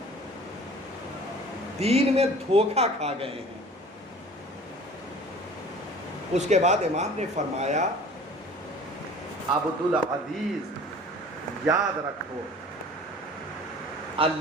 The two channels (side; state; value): both; normal; correlation 0.46